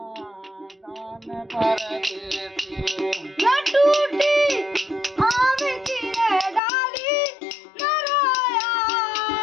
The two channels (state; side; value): drops out; right; at 6.6 s